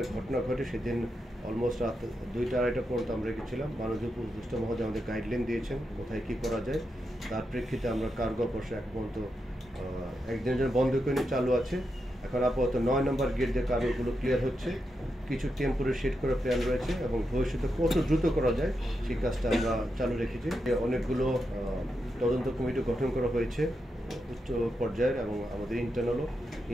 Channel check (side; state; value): both; normal; correlation 0.86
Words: ঘটনা ঘটে সেদিন অলমোস্ট রাত 2টা-2:30 পর্যন্ত আমরা রেখেছিলাম। মাননীয় উপদেষ্টা মহোদয় আমাদের গাইডলাইন দিয়েছেন কোথায় কী করা যায়। তার প্রেক্ষিতে আমরা কার্গো অপারেশন এখন পর্যন্ত একদিনের জন্য বন্ধ করে নিয়ে চালু আছে। এখন আপাতত 9 নম্বর গেট দিয়ে কার্গোগুলো ক্লিয়ার হচ্ছে, কিছু টেম্পোরারি শেড করার প্ল্যান রয়েছে এবং ভবিষ্যতে কত দ্রুত করা যায় সেই কাজটা আমরা চালু রেখেছি। অনেকগুলো তদন্ত কমিটি গঠন করা হয়েছে উচ্চ পর্যায়ের এবং আমাদের ইন্টারনালও।